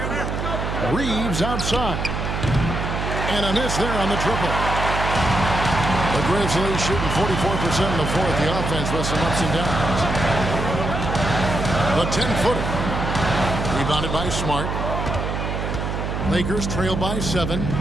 Reeves outside. And a miss there on the triple. The Grizzlies shooting 44% in the fourth. The offense with some ups and downs. The 10-footer. Rebounded by Smart. Lakers trail by 7.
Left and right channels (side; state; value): right; noise; hum, 3 dB below the sound